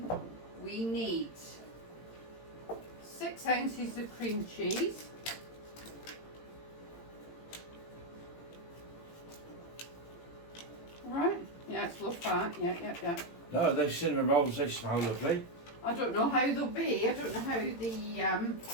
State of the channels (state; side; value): late; right; 18 ms